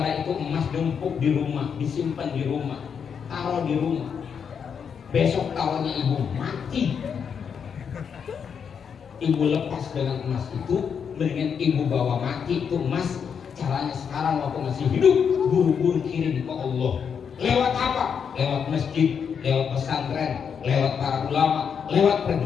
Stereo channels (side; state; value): right; quieter; 7.0 dB